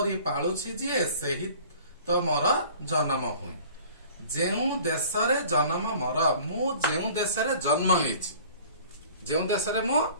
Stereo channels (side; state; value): both; inverted; correlation -0.47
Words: पालुछि जे सही तो मोर जन्म भूमि जो देश रे जन्म मोर मु जो देश रे जन्म हेछि जो देश रे मु